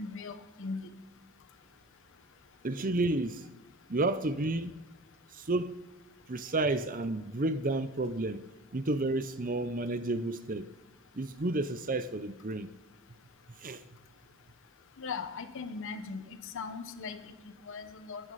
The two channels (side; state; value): both; normal; correlation 0.39